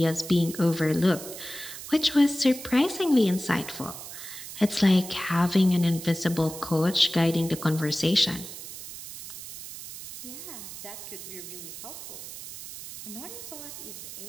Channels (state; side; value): noise; right; hiss, 11 dB below the sound